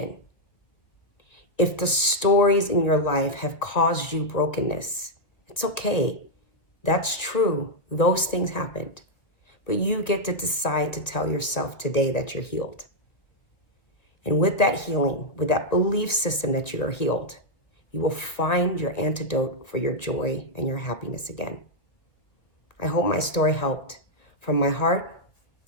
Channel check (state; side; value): late; right; 1.6 ms